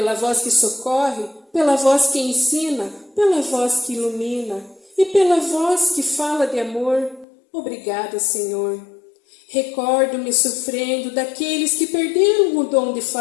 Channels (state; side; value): drops out; right; at 7.2 s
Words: voz que socorre, pela voz que ensina, pela voz que ilumina e pela voz que fala de amor. Obrigada, Senhor. Recordo-me sofrendo daqueles que perderam o dom de